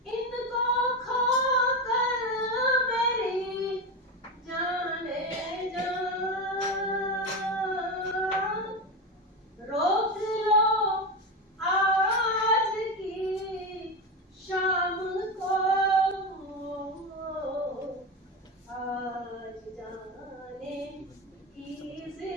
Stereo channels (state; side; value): normal; both; correlation 0.17